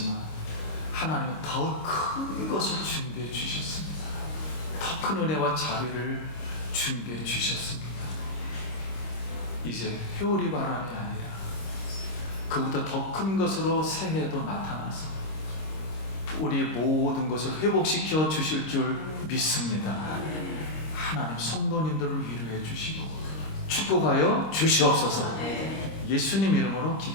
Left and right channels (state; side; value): late; right; 26 ms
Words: 하나님은 더 큰 것을 준비해 주셨습니다. 더 큰 은혜와 자비를 준비해 주셨습니다. 이제 회오리 바람이 아니라 그보다 더 큰 것으로 새해도 나타나서 우리의 모든 것을 회복시켜 주실 줄 믿습니다. 하나님 성도님들을 위로해 주시고 축복하여 주시옵소서. 예수님 이름으로